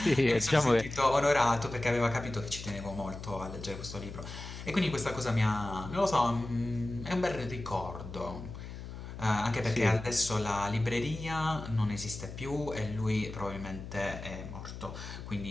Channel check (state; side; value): noise; left; hum, 10 dB below the sound